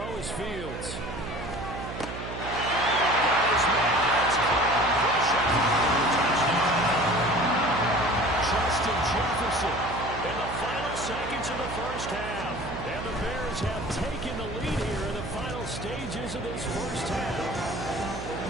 is Fields. Justin Jefferson in the final seconds of the first half. And the Bears have taken the lead here in the final stages of this first half.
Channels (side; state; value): right; noise; hum, 9 dB below the sound